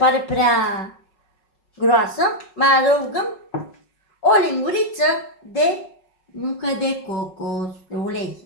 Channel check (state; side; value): late; right; 5.4 ms